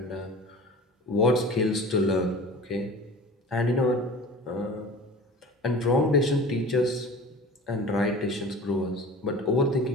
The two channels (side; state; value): both; normal; correlation 0.39